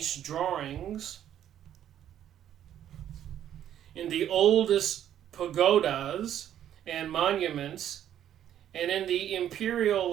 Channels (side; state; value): left; quieter; 10.8 dB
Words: drawings, in the oldest pagodas and monuments, and in the Imperial